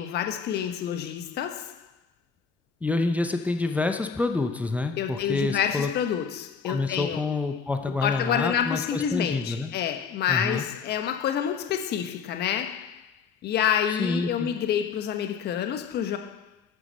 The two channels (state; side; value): quieter; right; 5.9 dB